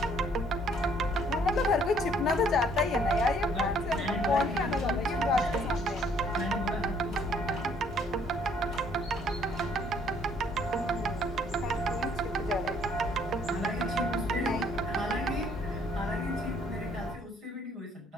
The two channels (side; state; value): both; normal; correlation 0.63